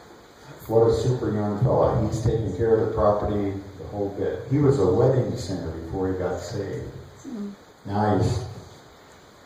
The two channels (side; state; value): both; identical; correlation 1.00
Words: What a super young fella. He's taking care of the property the whole bit. He was a wedding singer before he got saved. Now